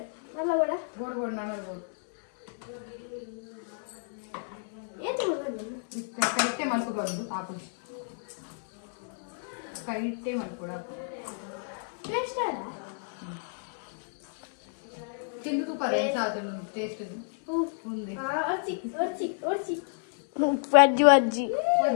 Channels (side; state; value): right; silent; 58 dB below the other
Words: നല്ല വട ಗೋಡ್ ನಾನು ಗೋಡ್ ಏನು ಬರ್ತದೆ ಕೈಟೆ ಮಲ್ಕೊಂಡು ಹಾಕು ಕೈಟೆ ಮಲ್ಕೊಡ ಟೇಸ್ಟ್ ಅಲ್ಲ ತಿಂದು ತುಪ್ಪ ರೇಸ್ ಆದನು ಟೇಸ್ಟ್ ఉంది ಒರ್ಚಿ ವಜ್ಜಿ